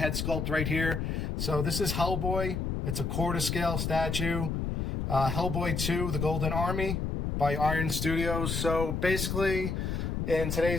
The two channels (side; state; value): left; noise; rumble, 1 dB below the sound